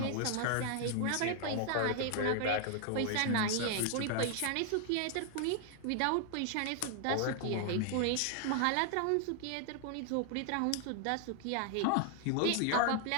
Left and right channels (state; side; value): different; both; correlation 0.00